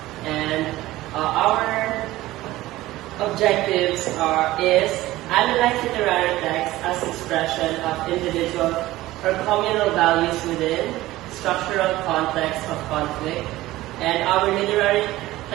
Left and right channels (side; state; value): left; quieter; 17.0 dB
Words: and our objectives is analyze literary text as expression of individual or communal values within structural context of conflict, and our literary